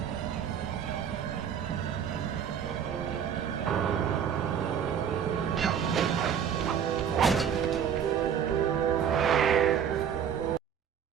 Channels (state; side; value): quieter; left; 8.2 dB